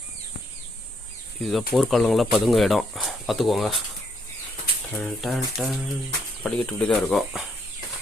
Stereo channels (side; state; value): both; normal; correlation 0.73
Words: இதுதான் போர்க்காலங்களாக பதுங்க இடம், பார்த்துக்கோங்க. படிக்கட்டு இப்படி தான் இருக்கும்.